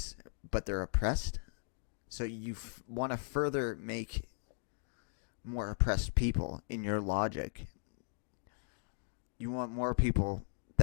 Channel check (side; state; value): right; silent; digital silence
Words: but they're oppressed, so you want to further make more oppressed people in your logic. You want more people